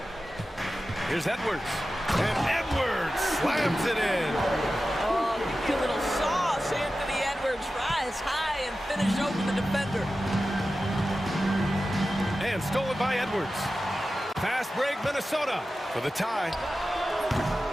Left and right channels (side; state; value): both; normal; correlation 0.94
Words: Here's Edwards. And Edwards slams it in. Oh, give a little sauce. Anthony Edwards rise high and finish over the defender. And stolen by Edwards. Fast break, Minnesota for the tie.